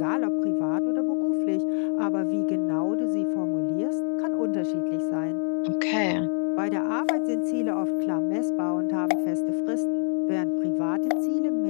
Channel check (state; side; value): silent; right; digital silence